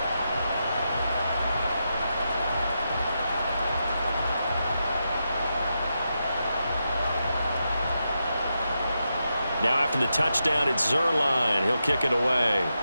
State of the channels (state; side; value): inverted; both; correlation -0.86